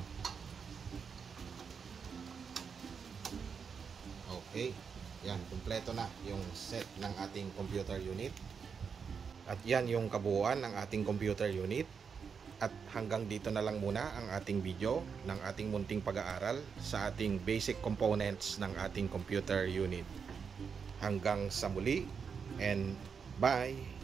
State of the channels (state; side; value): quieter; left; 6.2 dB